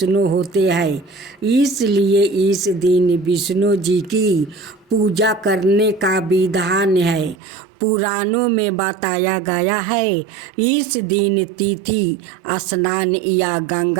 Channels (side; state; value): left; drops out; at 7.4 s